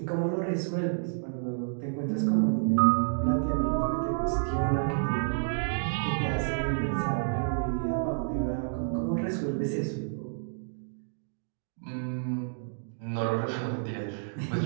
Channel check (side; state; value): left; silent; digital silence